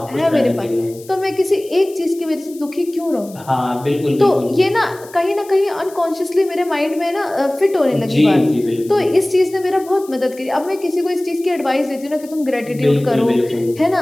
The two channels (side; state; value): left; noise; hiss, 22 dB below the sound